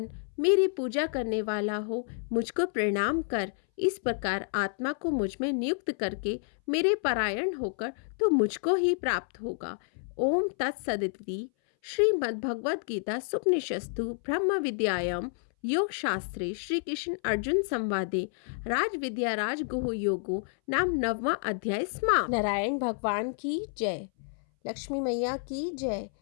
मेरी पूजा करने वाला हो, मुझको प्रणाम कर। इस प्रकार आत्मा को मुझ में नियुक्त करके मेरे परायण होकर तो मुझको ही प्राप्त होगा। ओम तत्सदिति। श्रीमद्भगवद गीता सुपनिषस्तु ब्रह्म विद्यायाम योग शास्त्रे श्री कृष्ण अर्जुन संवादे राज विद्या राज गुह योगो नाम 9वां अध्याय समाप्त। नारायण भगवान की जय, लक्ष्मी मैया की जय,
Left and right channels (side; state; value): right; silent; 58 dB below the other